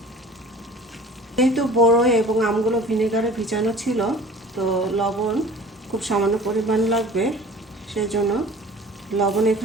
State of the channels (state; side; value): normal; both; correlation 0.44